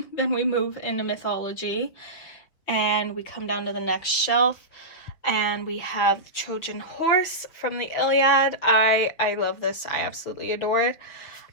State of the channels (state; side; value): late; right; 6.0 ms